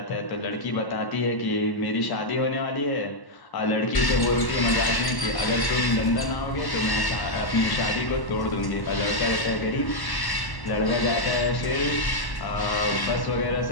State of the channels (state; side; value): late; right; 1.1 ms